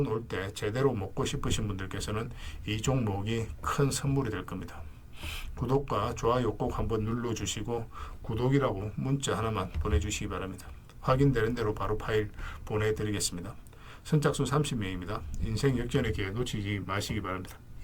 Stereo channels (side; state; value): both; identical; correlation 1.00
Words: 올 때 제대로 먹고 싶으신 분들께서는 이 종목이 큰 선물이 될 겁니다. 구독과 좋아요 꼭 한번 눌러주시고 구독이라고 문자 하나만 보내주시기 바랍니다. 확인되는 대로 바로 파일 보내드리겠습니다. 선착순 30명입니다. 인생 역전의 기회 놓치지 마시기 바랍니다.